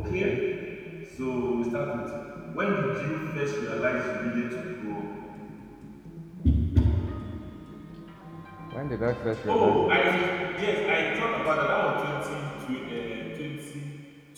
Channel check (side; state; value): both; identical; correlation 1.00